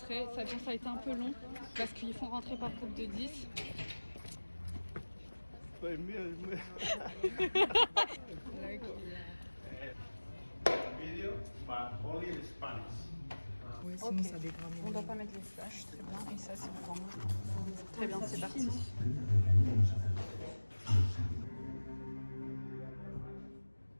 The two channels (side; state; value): both; inverted; correlation -1.00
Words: Ça a été un peu long parce qu'ils font rentrer par groupe de 10. Video, but only in Spanish. Ouais, sinon ça dégrade. On ne doit pas mettre les flashs, très bien. Et ça, c'est pour moi. Très bien, c'est parti.